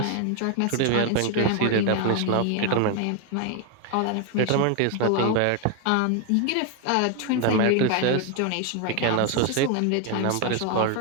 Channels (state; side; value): different; both; correlation 0.01